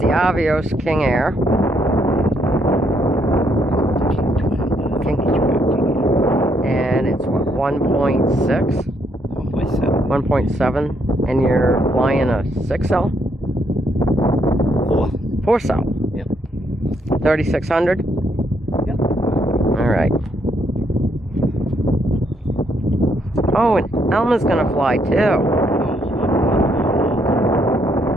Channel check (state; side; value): normal; both; correlation 0.73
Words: Avios King Air. And it's what, 1.6? 1.7. And you're flying a 6L? 4-cell. Yep. 3600? Yep. Alright. Oh, and Elma's gonna fly too.